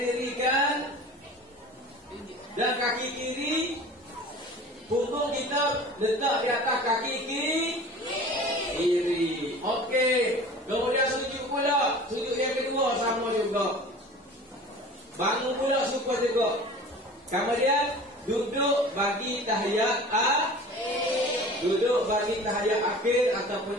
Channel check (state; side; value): normal; both; correlation 0.41